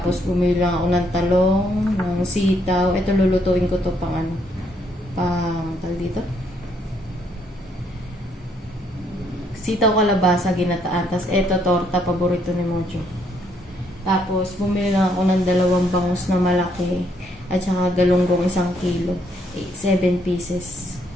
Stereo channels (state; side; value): normal; both; correlation 0.71